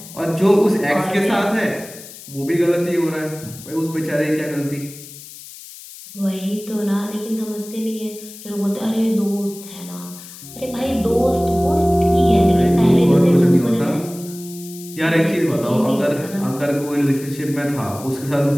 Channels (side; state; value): left; noise; hiss, 16 dB below the sound